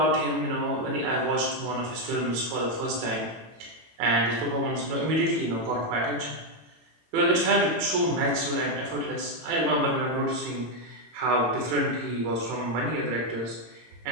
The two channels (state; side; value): late; left; 18 ms